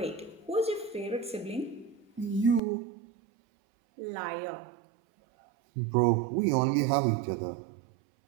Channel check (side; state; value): left; drops out; at 2.6 s